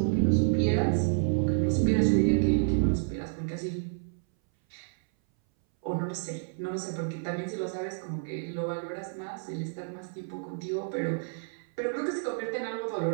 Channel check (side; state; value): left; silent; 58 dB below the other